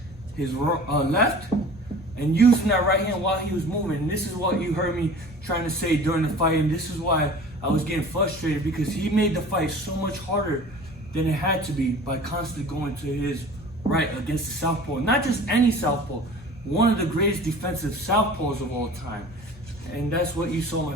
his left and using that right hand while he was moving. And this is what you heard me trying to say during the fight, and this is why I was getting frustrated, because he made the fight so much harder than it had to be by constantly going to his right against the southpaw. Not just any southpaw, one of the greatest defensive southpaws of all time. And that's what you saw my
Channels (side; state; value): both; normal; correlation 0.43